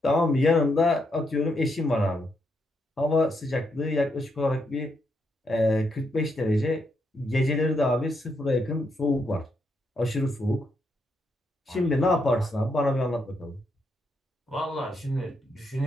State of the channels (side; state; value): both; normal; correlation 0.79